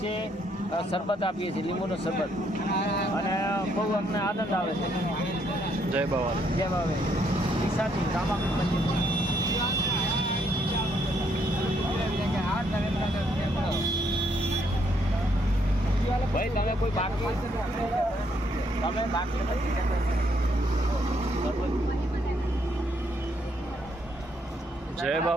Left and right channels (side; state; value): both; normal; correlation 0.72